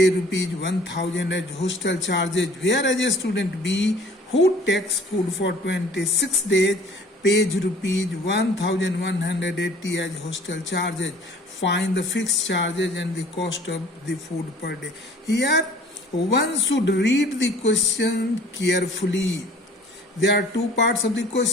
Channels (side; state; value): both; normal; correlation 0.51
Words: rupees 1000 as hostel charges, whereas a student B who takes food for 26 days pays rupees 1180 as hostel charges. Find the fixed charges and the cost of the food per day. Here one should read the question carefully. There are two parts of the